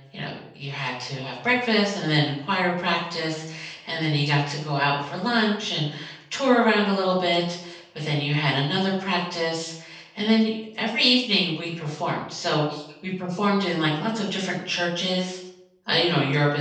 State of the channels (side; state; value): both; identical; correlation 1.00